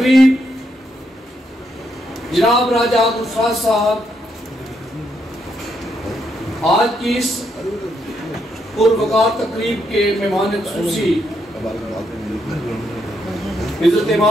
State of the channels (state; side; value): normal; both; correlation 0.78